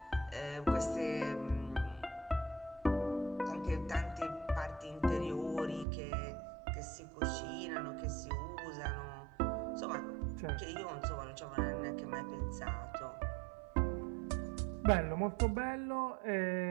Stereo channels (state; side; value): drops out; left; at 5.9 s